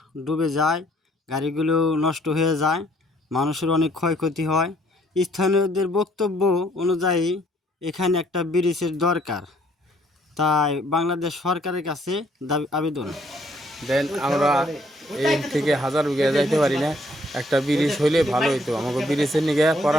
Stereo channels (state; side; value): normal; both; correlation 0.65